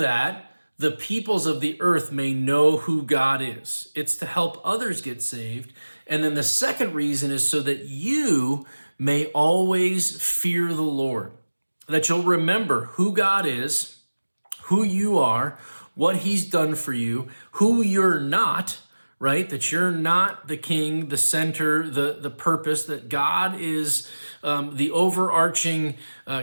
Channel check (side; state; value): both; inverted; correlation -1.00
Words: the peoples of the earth may know who God is. It's to help others get saved. And then the second reason is so that you may always fear the Lord, that you'll remember who God is, who you are, what he's done for you, who you're not, right? That you're not the king, the center, the purpose, that God is the overarching